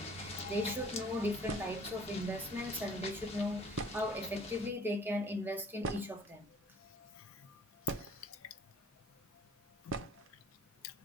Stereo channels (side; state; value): both; normal; correlation 0.54